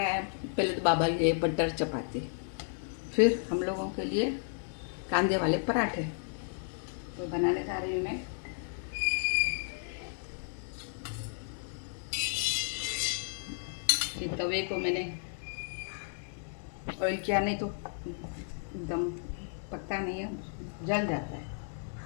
है। पहले तो बाबा के लिए बटर चपाती, फिर हम लोगों के लिए कांदे वाले पराठे। तो बनाने जा रही हूँ मैं। कि तवे को मैंने ऑयल किया, नहीं तो एकदम पकता नहीं है, जल जाता है।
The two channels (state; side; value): silent; right; digital silence